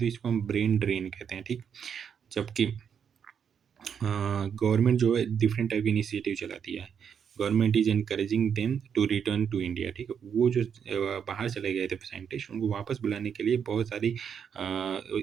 इसको हम ब्रेन ड्रेन कहते हैं, ठीक? जबकि गवर्नमेंट जो है डिफरेंट टाइप की इनिशिएटिव चलाती है। Government is encouraging them to return to India, ठीक है? वो जो बाहर चले गए थे साइंटिस्ट, उनको वापस बुलाने के लिए बहुत सारी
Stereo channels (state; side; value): quieter; left; 7.5 dB